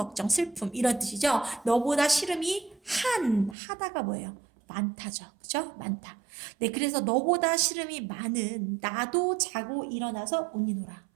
슬픔 이런 뜻이죠. 너보다 시름이 하다가 뭐예요? 많다죠. 그죠? 많다. 네, 그래서 너보다 시름이 많은 나도 자고 일어나서 우니노라.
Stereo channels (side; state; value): left; drops out; at 3.6 s